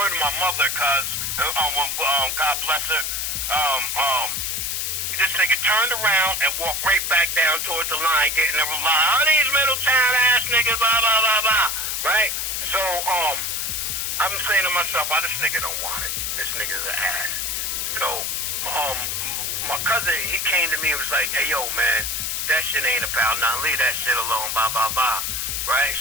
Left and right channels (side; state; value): left; noise; hiss, 1 dB below the sound